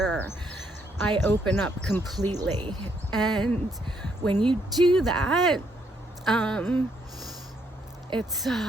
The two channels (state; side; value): normal; both; correlation 0.73